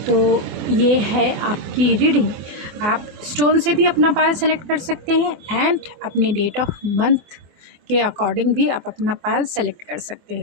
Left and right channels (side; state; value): left; late; 24 ms